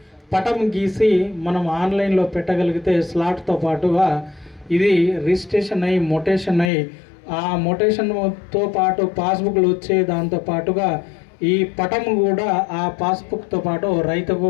పటం గీసి మనం ఆన్లైన్లో పెట్టగలిగితే స్లాట్తో పాటుగా ఇది రిజిస్ట్రేషన్ అయ్యి మొటేషన్ అయ్యి ఆ మొటేషన్తో పాటు పాస్బుక్లు వచ్చే దాంతో పాటుగా ఈ పటం కూడా ఆ పాస్బుక్తో పాటు రైతుకు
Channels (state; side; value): drops out; right; at 6.7 s